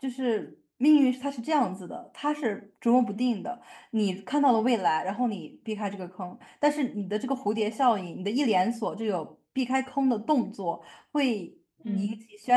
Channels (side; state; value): both; identical; correlation 1.00